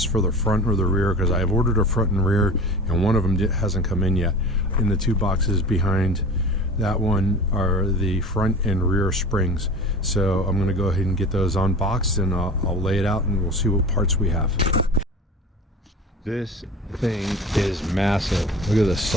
for the front or the rear because I've ordered a front and rear and one of them hasn't come in yet. In the two boxes behind that one are the front and rear springs. So I'm going to go ahead and get those unboxed and I'll lay it out and we'll see what parts we have. This thing is massive. Look at the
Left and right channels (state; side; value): normal; both; correlation 0.36